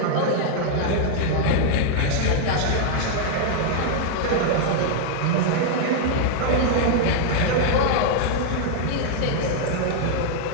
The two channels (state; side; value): different; both; correlation -0.01